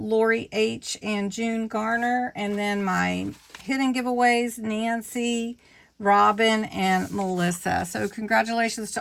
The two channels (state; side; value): identical; both; correlation 1.00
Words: H. and June Garner, and then my hidden giveaways, Nancy, Robin, and Melissa. So congratulations